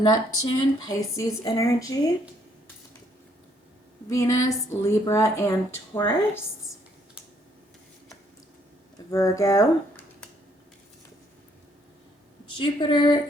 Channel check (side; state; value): both; normal; correlation 0.68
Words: Pisces energy, Venus, Libra, and Taurus, Virgo, Jupiter,